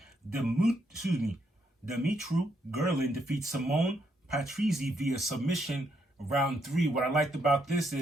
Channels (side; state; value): both; normal; correlation 0.76